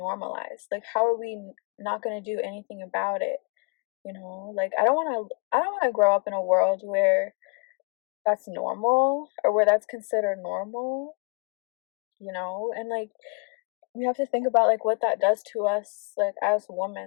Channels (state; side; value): quieter; right; 32.4 dB